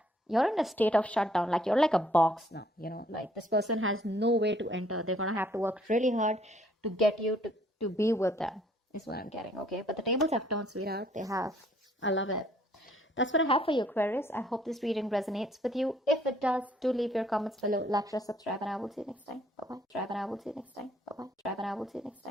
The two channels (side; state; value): both; normal; correlation 0.63